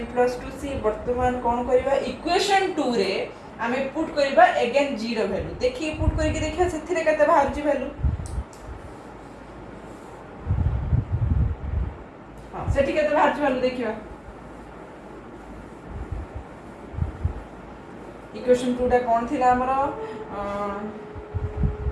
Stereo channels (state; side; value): identical; both; correlation 1.00